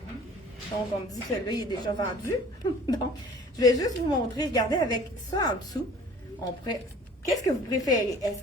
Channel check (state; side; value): normal; both; correlation 0.48